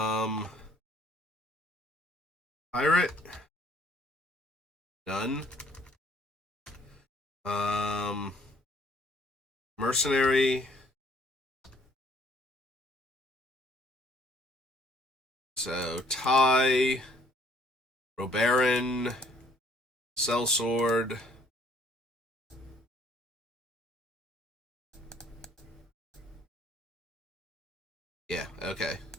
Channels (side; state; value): both; normal; correlation 0.62